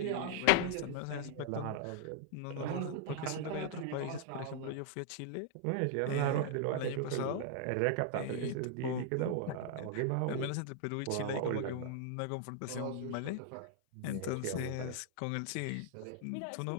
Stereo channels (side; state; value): both; different; correlation -0.01